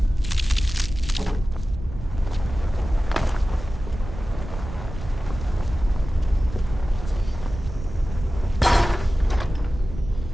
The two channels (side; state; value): right; noise; rumble, 10 dB below the sound